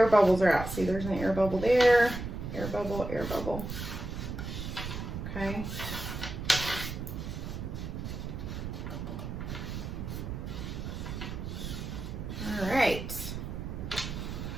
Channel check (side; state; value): right; noise; rumble, 6 dB below the sound